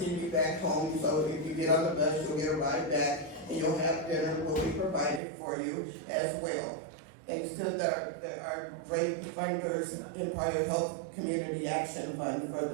you back home. So if you get on the bus, you'll get a ride back, and you'll have dinner will be provided for you as well. Thanks to our great funders, Empire Health Community Action Fund for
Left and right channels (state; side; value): drops out; left; at 5.2 s